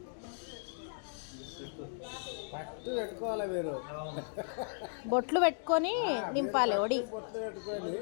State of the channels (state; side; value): silent; right; digital silence